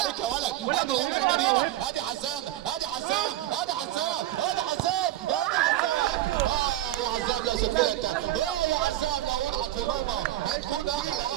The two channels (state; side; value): quieter; left; 14.2 dB